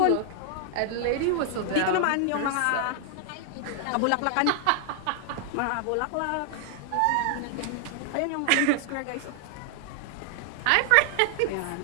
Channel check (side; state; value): both; different; correlation 0.00